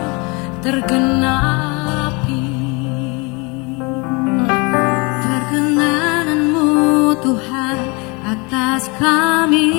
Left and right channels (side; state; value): right; quieter; 28.7 dB